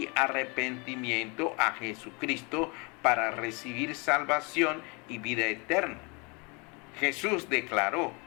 arrepentimiento a Jesucristo para recibir salvación y vida eterna. Jesús declaró:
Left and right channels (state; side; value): quieter; right; 30.5 dB